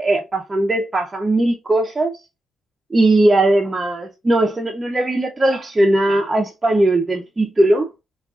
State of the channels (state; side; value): normal; both; correlation 0.90